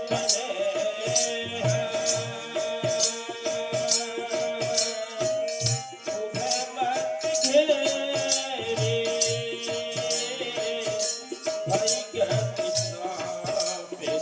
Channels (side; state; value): both; identical; correlation 1.00